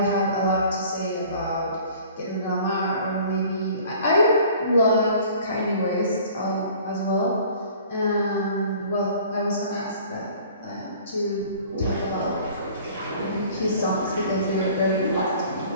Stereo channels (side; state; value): both; inverted; correlation -0.49